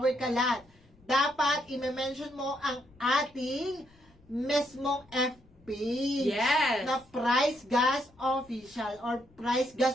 Kalan. Dapat i-mention mo ang ating mismong FP Yes. na Price Gas Official or Price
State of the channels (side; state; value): left; noise; rumble, 29 dB below the sound